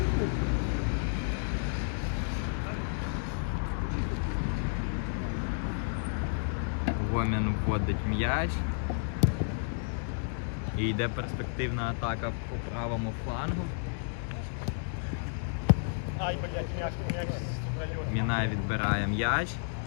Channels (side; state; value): right; silent; digital silence